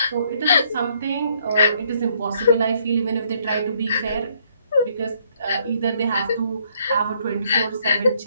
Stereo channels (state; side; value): inverted; both; correlation -0.68